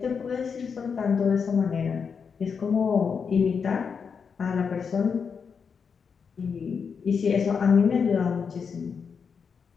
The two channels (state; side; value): quieter; right; 6.1 dB